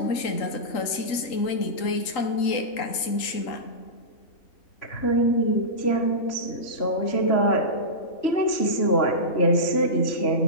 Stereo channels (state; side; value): late; right; 3.8 ms